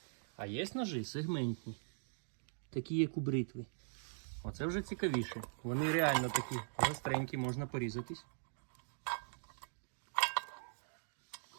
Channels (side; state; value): left; silent; digital silence